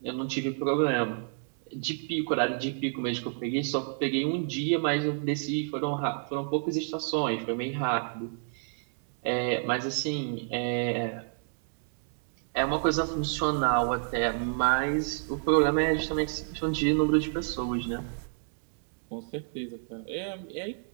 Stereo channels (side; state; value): left; silent; digital silence